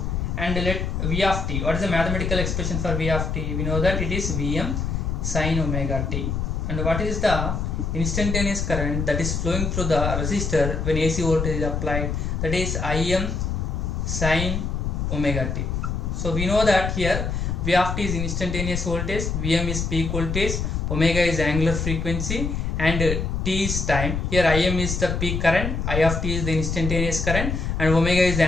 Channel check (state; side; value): noise; left; rumble, 2 dB below the sound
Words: And let V of t, what is the mathematical expression for V of t? We know that it is Vm sin omega t. And what is the instantaneous current that is flowing through the resistor when AC voltage is applied? That is Im sin omega t. So we know that here V of t is instantaneous voltage, Vm is peak voltage, omega is angular frequency, and t is time. Here Im is the peak current, I of t is the instantaneous current, and omega is the